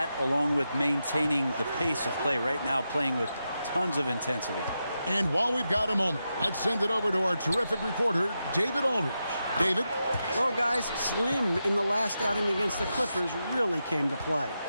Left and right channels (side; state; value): both; inverted; correlation -0.88